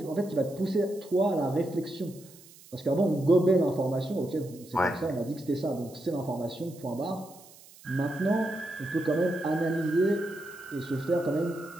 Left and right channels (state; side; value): noise; right; hiss, 22 dB below the sound